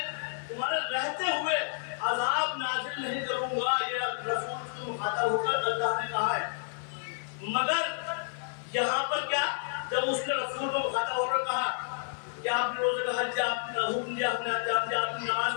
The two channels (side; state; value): right; silent; 56 dB below the other